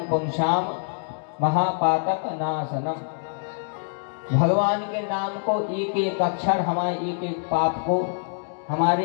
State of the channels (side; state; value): right; silent; digital silence